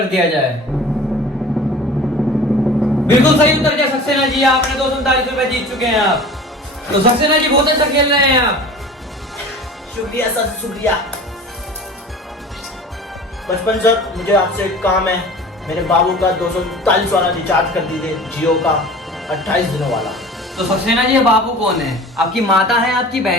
दिया जाए। बिल्कुल सही उत्तर दिया सक्सेना जी, आपने 239 रुपए जीत चुके हैं आप। तो सक्सेना जी बहुत अच्छा खेल रहे हैं आप। शुक्रिया सर, शुक्रिया। बचपन सर, मुझे आपसे एक काम है। मेरे बाबू का 239 वाला रिचार्ज कर दीजिए, जियो का 28 दिनों वाला। तो सक्सेना जी, बाबू कौन है? आपकी माता है, आपकी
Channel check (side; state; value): both; normal; correlation 0.41